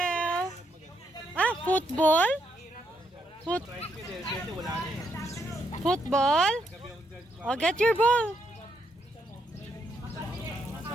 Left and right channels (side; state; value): both; normal; correlation 0.77